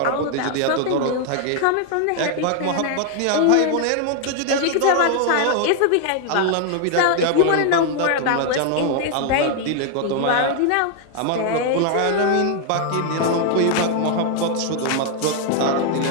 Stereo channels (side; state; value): both; different; correlation 0.00